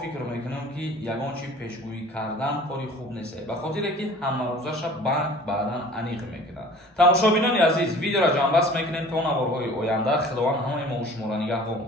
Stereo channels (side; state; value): both; normal; correlation 0.46